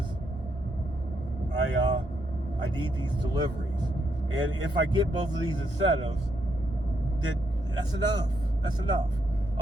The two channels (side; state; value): both; normal; correlation 0.77